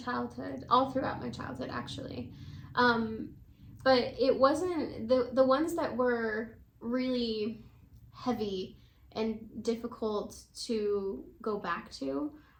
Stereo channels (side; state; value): both; identical; correlation 1.00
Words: all throughout my childhood actually, but it wasn't the ones that were really heavy and difficult to go back to.